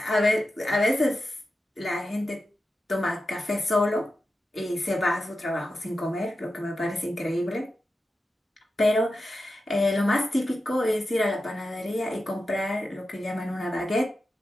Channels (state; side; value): normal; both; correlation 0.91